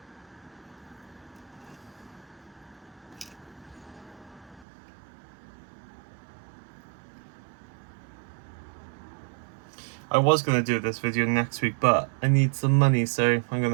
I was going to do this video next week, but I need some money, so I'm going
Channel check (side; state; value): left; drops out; at 4.7 s